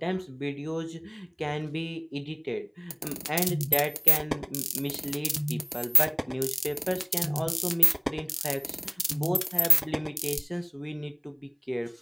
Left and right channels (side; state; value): both; identical; correlation 1.00